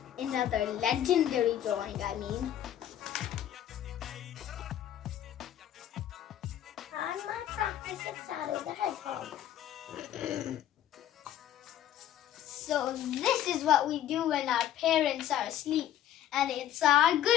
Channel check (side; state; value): right; quieter; 11.3 dB